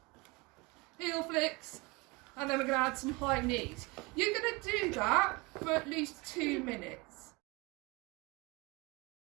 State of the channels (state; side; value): quieter; left; 25.4 dB